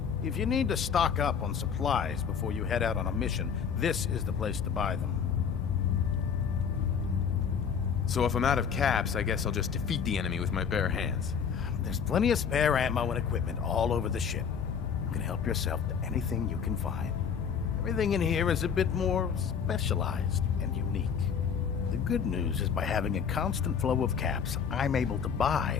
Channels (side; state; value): right; quieter; 7.0 dB